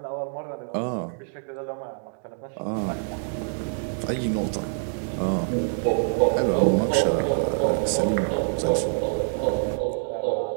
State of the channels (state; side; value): silent; left; digital silence